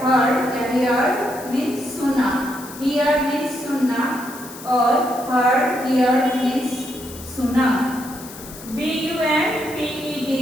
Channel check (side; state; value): left; noise; hiss, 15 dB below the sound